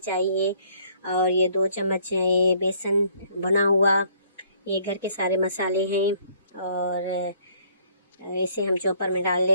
और ये 2 चम्मच ये बेसन बना हुआ, ये घर के सारे मसाले हैं। और इसे हम चॉपर में डाल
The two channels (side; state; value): both; inverted; correlation -0.62